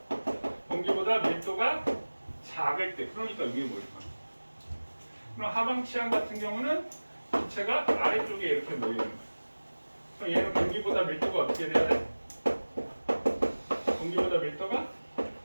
공기보다 밀도가 작을 때, 그러니까 위에 모일 거야. 그럼 하방치환 같은 경우는 기체가 아래쪽에 이렇게 모이는 거야. 그럼 얘는 공기보다 밀도가 어떻게 돼야 돼? 공기보다 밀도가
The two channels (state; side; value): inverted; both; correlation -1.00